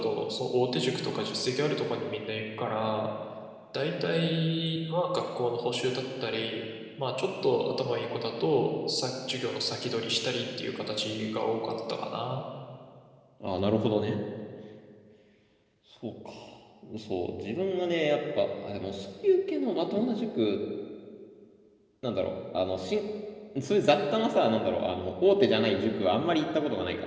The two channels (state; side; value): identical; both; correlation 1.00